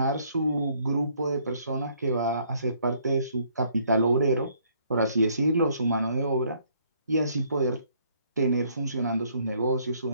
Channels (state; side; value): inverted; both; correlation -0.65